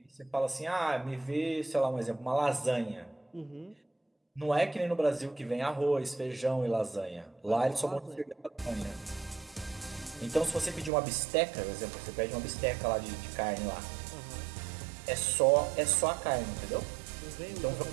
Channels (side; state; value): left; drops out; at 10.9 s